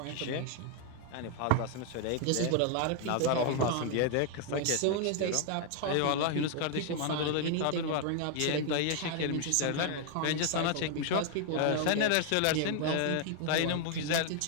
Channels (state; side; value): different; both; correlation 0.00